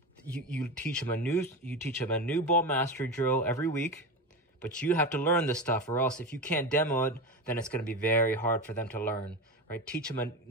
you teach them a new ball mastery drill every week, but you have to learn this stuff, or else if you can't demo it, then it's going to be very hard for them to learn, right?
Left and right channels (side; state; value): both; normal; correlation 0.21